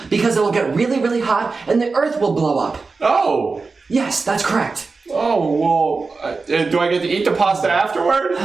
because it will get really, really hot and the earth will blow up. Oh. Yes, that's correct. Oh, well, do I get to eat the pasta afterward?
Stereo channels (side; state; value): left; quieter; 4.2 dB